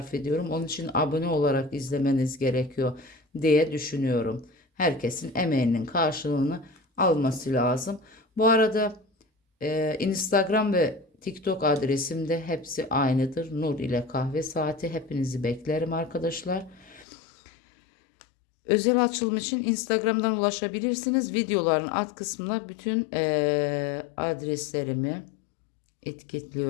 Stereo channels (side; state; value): right; drops out; at 17.1 s